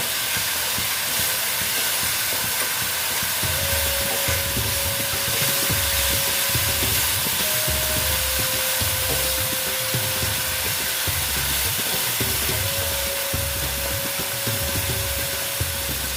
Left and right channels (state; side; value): identical; both; correlation 1.00